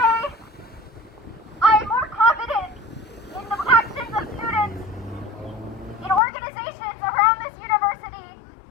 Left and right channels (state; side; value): drops out; right; at 6.2 s